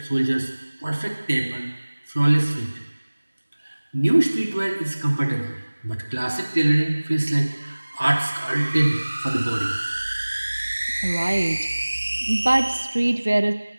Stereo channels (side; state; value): both; inverted; correlation -1.00